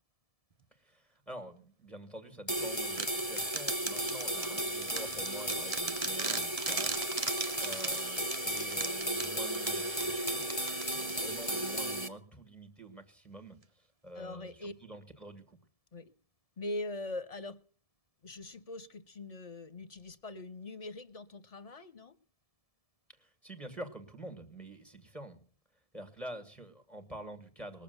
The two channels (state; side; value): late; right; 1.7 ms